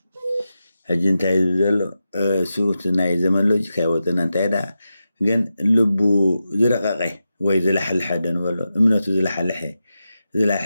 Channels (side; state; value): both; inverted; correlation -0.90